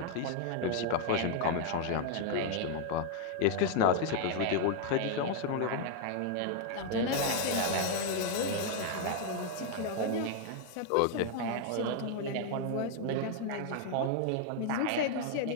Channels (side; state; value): both; different; correlation 0.00